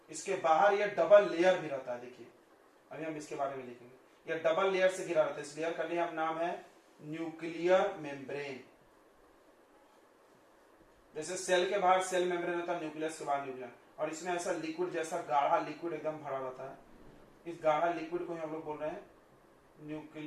इसके बाहर ये डबल लेयर भी रहता है। देखिए अभी हम इसके बारे में लिखेंगे। ये डबल लेयर से घिरा रहता है। इस लेयर का लिए हम नाम है न्यूक्लियर मेम्ब्रेन। जैसे सेल के बाहर सेल मेम्ब्रेन होता है, न्यूक्लियस के बाहर न्यूक्लियर। और इसमें ऐसा लिक्विड जैसा गाढ़ा लिक्विड एकदम भरा रहता है। इस गाढ़ा लिक्विड को हम लोग बोल रहे हैं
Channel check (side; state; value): both; identical; correlation 1.00